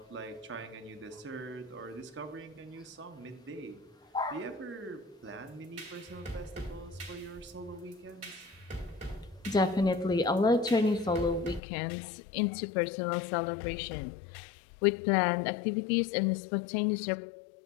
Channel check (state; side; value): drops out; right; at 11.6 s